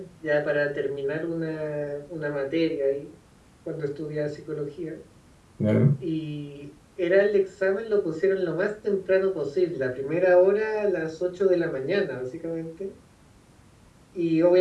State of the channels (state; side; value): identical; both; correlation 1.00